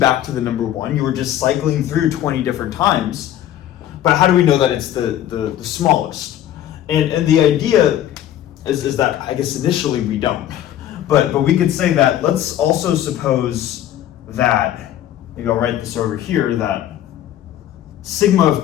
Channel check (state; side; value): quieter; right; 11.8 dB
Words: to the number 1. You were just cycling through 20 different times. But how do we know that it's the smallest? And the idea is that, I guess initially we don't. But we could say that, let's also suppose that, maybe I'll write this over here, that sigma of